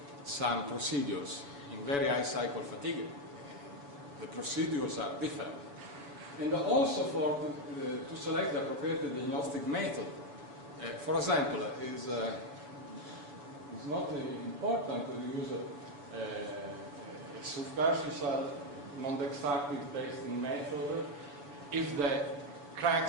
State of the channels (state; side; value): late; left; 7.0 ms